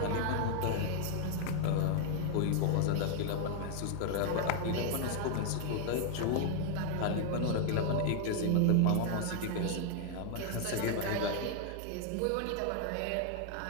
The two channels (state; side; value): different; both; correlation 0.00